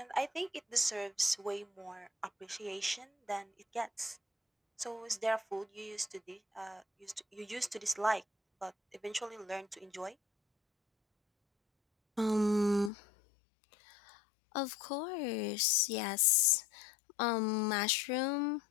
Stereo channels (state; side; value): drops out; right; at 12.9 s